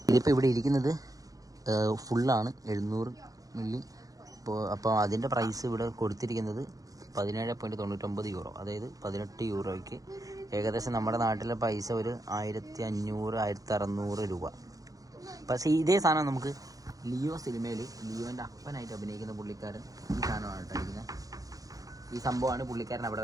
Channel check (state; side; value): late; left; 0.17 ms